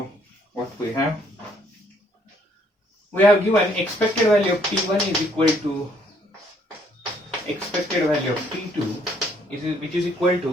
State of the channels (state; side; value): normal; both; correlation 0.66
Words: what we have given expected value of T1 is equal to expected value of T2 which is equal